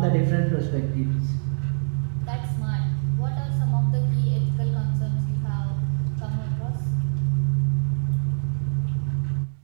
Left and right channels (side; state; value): left; silent; digital silence